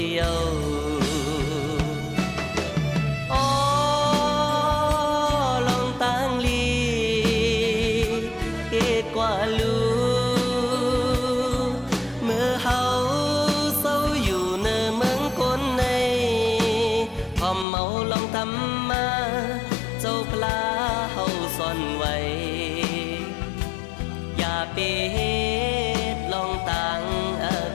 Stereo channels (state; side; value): drops out; right; at 17.7 s